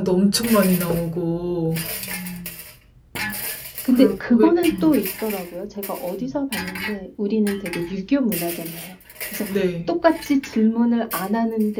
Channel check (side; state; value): both; identical; correlation 1.00